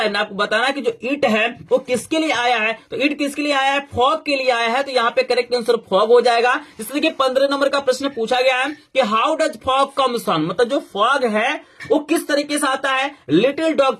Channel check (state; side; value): identical; both; correlation 1.00